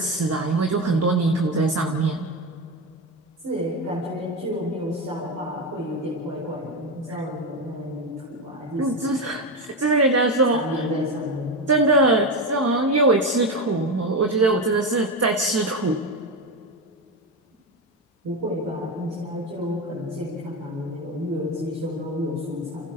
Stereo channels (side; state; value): both; normal; correlation 0.16